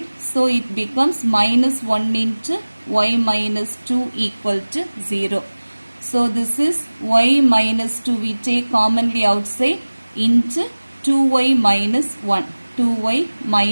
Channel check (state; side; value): inverted; both; correlation -1.00